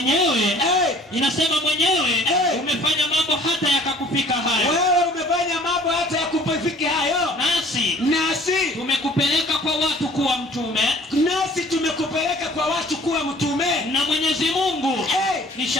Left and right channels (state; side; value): normal; both; correlation 0.52